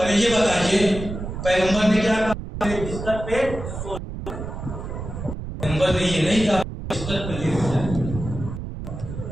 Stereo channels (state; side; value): noise; right; rumble, 8 dB below the sound